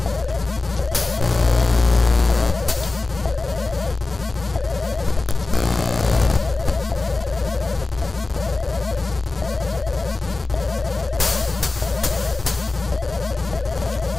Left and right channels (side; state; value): right; quieter; 3.4 dB